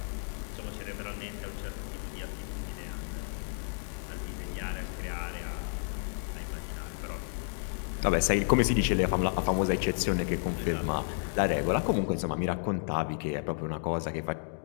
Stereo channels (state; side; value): silent; right; digital silence